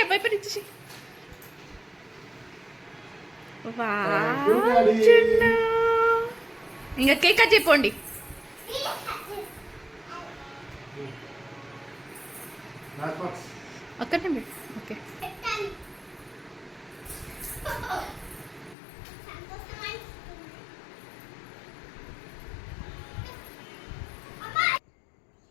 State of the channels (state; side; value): drops out; right; at 18.8 s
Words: వైపర్ ఇచ్చేసి. ఇంకా cake cut చెప్పండి. అక్కడనే okay.